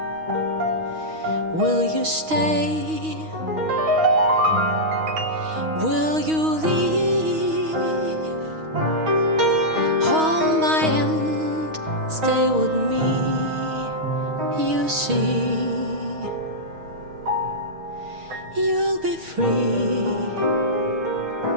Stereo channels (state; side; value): late; left; 6.3 ms